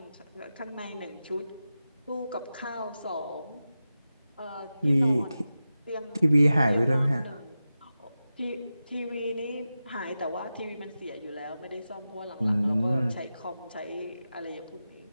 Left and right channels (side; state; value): both; inverted; correlation -0.93